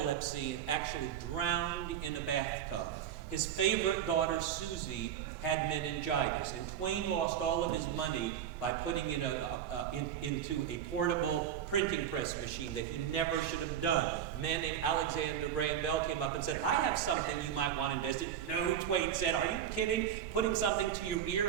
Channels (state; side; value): quieter; left; 9.7 dB